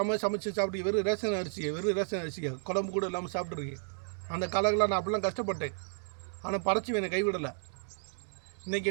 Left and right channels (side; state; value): left; silent; 56 dB below the other